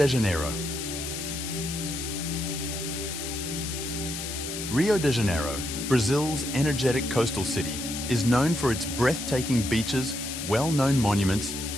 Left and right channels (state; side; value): noise; left; hiss, 6 dB below the sound